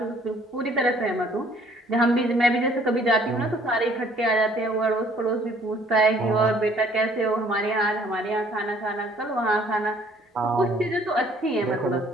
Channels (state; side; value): normal; both; correlation 0.59